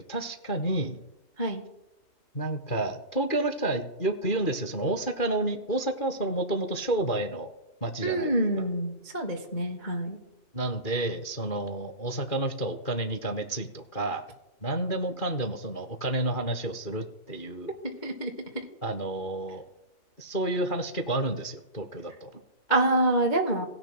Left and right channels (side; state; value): right; late; 2.4 ms